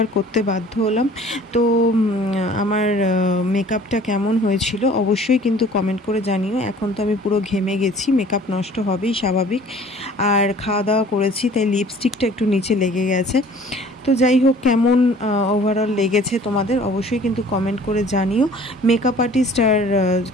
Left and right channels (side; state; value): both; normal; correlation 0.50